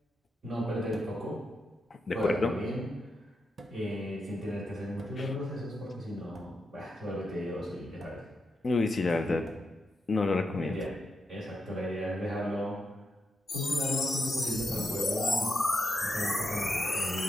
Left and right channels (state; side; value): normal; both; correlation 0.84